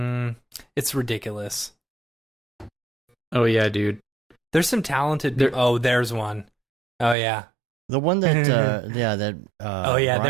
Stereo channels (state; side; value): drops out; left; at 7.2 s